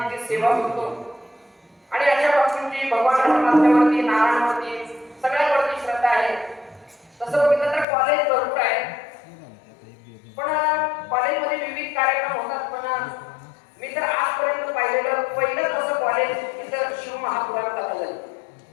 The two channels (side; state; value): right; drops out; at 7.9 s